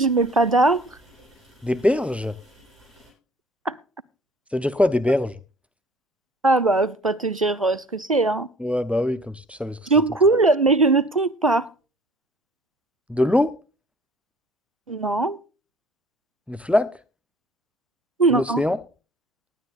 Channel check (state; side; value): normal; both; correlation 0.52